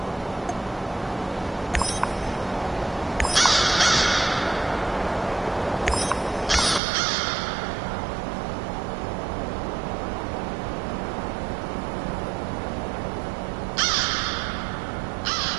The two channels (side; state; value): left; drops out; at 6.8 s